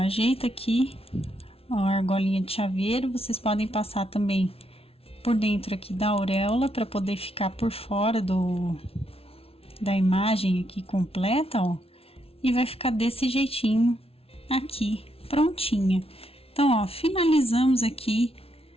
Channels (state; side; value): late; right; 0.28 ms